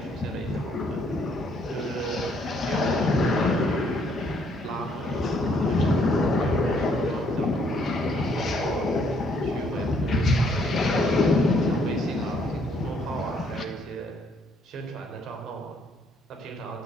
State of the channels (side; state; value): both; normal; correlation 0.67